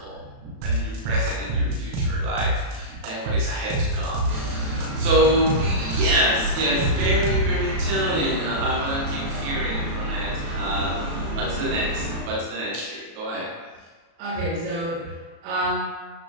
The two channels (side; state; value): left; late; 36 ms